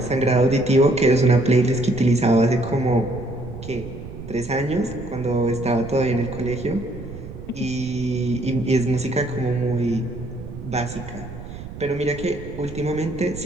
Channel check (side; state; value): right; noise; rumble, 12 dB below the sound